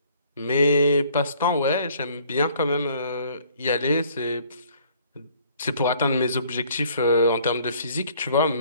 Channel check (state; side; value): inverted; both; correlation -0.58